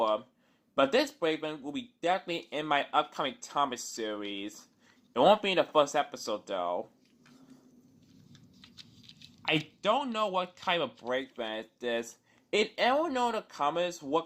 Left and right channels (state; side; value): identical; both; correlation 1.00